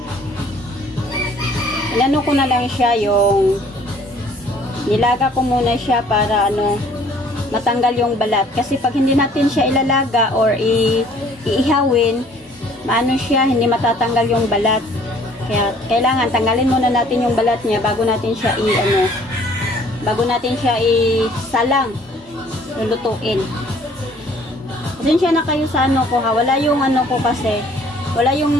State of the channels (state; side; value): normal; both; correlation 0.57